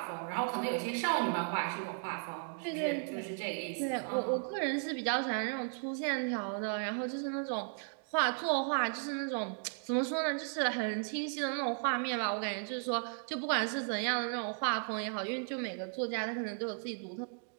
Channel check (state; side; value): silent; left; 54 dB below the other